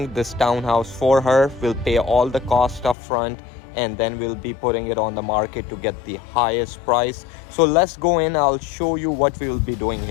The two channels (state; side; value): drops out; right; at 3.0 s